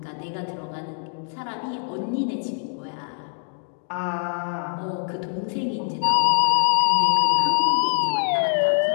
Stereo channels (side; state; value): right; silent; digital silence